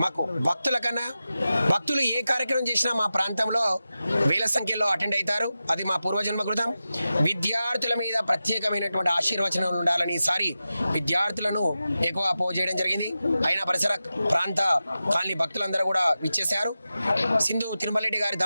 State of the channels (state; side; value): inverted; both; correlation -0.93